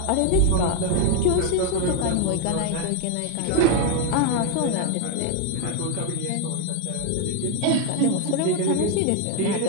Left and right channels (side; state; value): both; different; correlation 0.01